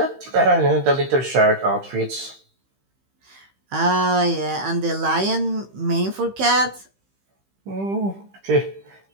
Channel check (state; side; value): late; left; 15 ms